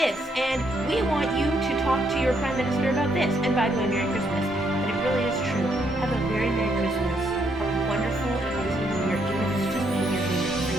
and we want you to talk to your Prime Minister about this. And by the way, Merry Christmas. But it really is true. Have a very Merry Christmas, a wonderful and amazing New Year, even if it's just New Year's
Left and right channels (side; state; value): both; normal; correlation 0.74